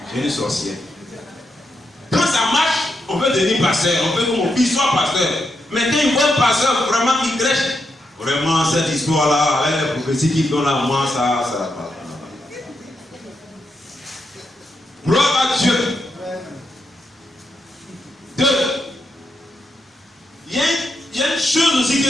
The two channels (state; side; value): normal; both; correlation 0.83